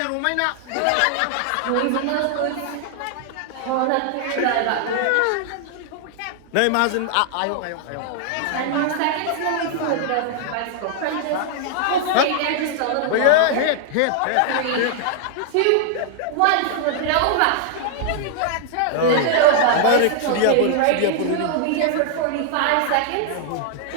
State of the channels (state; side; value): different; both; correlation 0.00